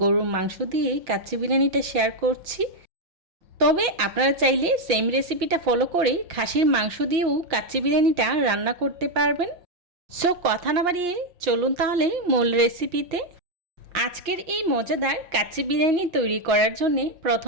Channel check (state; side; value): late; left; 5.7 ms